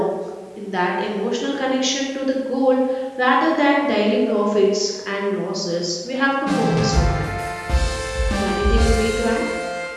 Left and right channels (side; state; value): both; identical; correlation 1.00